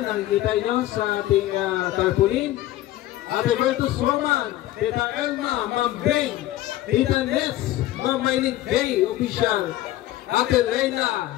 nakikita nyo sa ating tarpaulin. Ate Bertus Roman, Tita Elma, Ma'am Beng, Tita Ness, Ma'am Maylin Bay, Official, Ate Reyna,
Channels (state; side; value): quieter; right; 15.0 dB